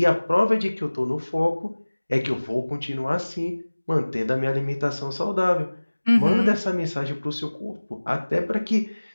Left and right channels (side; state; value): both; inverted; correlation -1.00